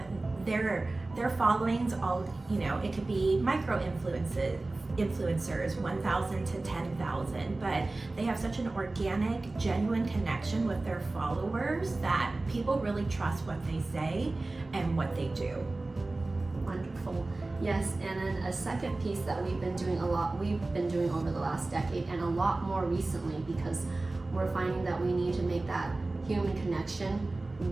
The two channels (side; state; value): left; quieter; 3.1 dB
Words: Their followings, it could be micro influencers, 1,000 to 10,000, but they have such an organic, genuine connection with their followers that people really trust what they say and what they do. Wonderful. Yes, and then a second piece that we've been doing over the last decade, and a lot more recently, because we're finding that we need to make that human connection